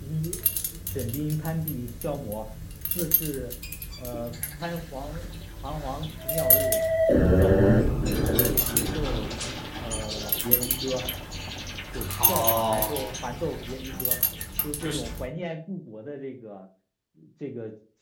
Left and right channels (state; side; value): identical; both; correlation 1.00